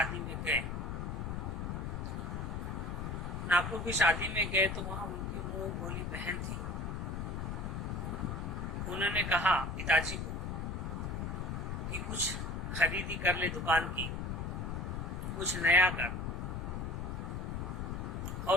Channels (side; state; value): left; noise; rumble, 3 dB below the sound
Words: में गए। नागपुर की शादी में गए तो वहां उनकी मुंह बोली बहन थी। उन्होंने कहा पिताजी को कि कुछ खरीदी कर ले दुकान की, कुछ नया कर।